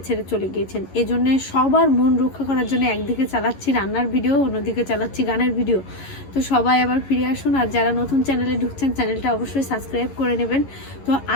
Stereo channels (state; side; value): late; right; 11 ms